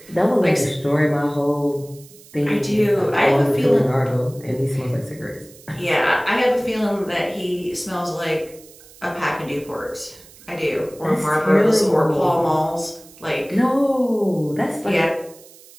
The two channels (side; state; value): right; noise; hiss, 23 dB below the sound